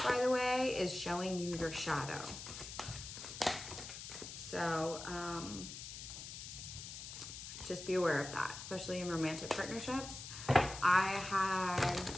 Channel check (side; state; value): left; noise; hiss, 10 dB below the sound